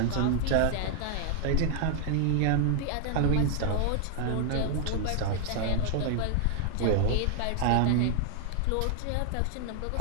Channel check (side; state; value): both; different; correlation 0.00